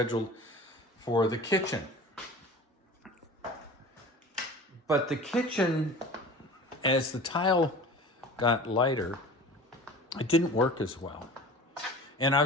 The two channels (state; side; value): normal; both; correlation 0.39